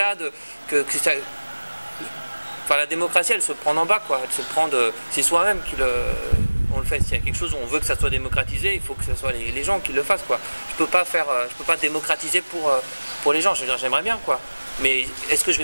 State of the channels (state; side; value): inverted; both; correlation -1.00